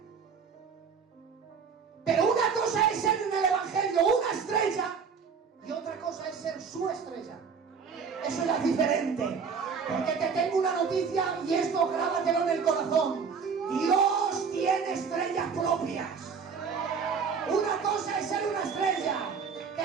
Pero una cosa es ser en el Evangelio una estrella y otra cosa es ser su estrella. Eso ya es diferente. Porque te tengo una noticia y esto grábatelo en el corazón. Dios tiene estrellas propias. Una cosa es ser una estrella.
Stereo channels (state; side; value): quieter; left; 5.9 dB